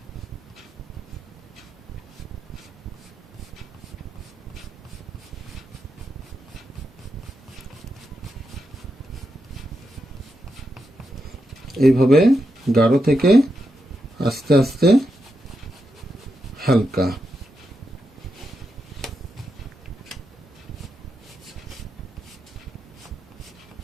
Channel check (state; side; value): normal; both; correlation 0.85